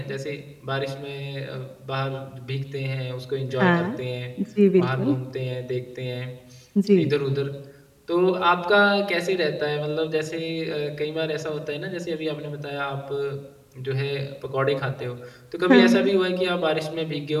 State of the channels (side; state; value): both; identical; correlation 1.00